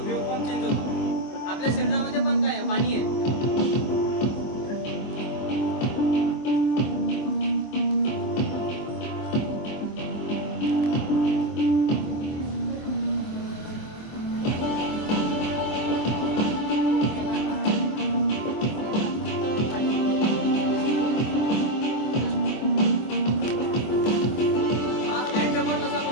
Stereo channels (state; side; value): late; right; 23 ms